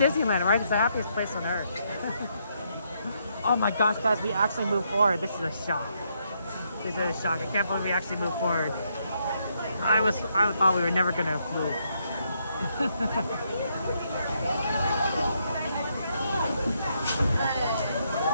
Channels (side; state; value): both; inverted; correlation -0.76